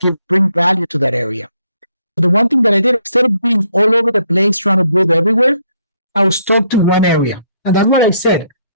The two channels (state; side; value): inverted; both; correlation -0.71